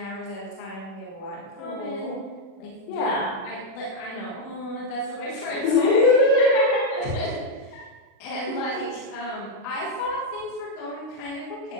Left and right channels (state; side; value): late; right; 36 ms